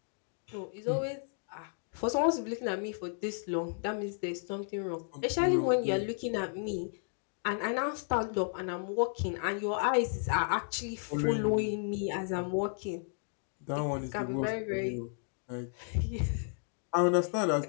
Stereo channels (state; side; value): silent; right; 56 dB below the other